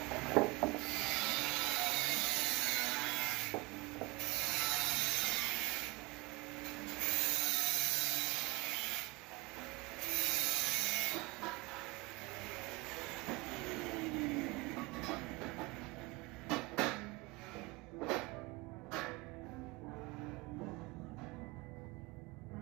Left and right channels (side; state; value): left; quieter; 23.5 dB